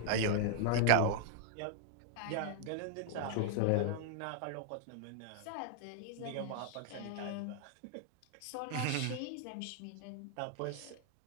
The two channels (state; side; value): different; both; correlation 0.00